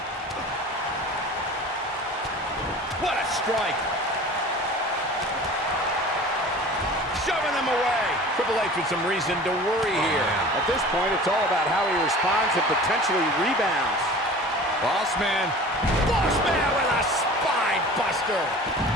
What a strike. Shoving them away. Triple H with some reason to worry here. At this point, it's all about how he responds and potentially rebounds. Bossman. Bossman with a spine buster.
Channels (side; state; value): both; normal; correlation 0.41